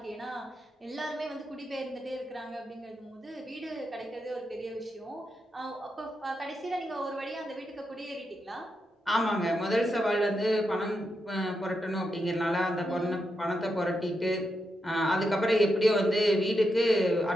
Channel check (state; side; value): normal; both; correlation 0.85